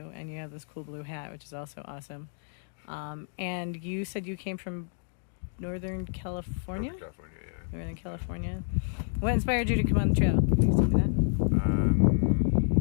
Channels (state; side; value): silent; right; digital silence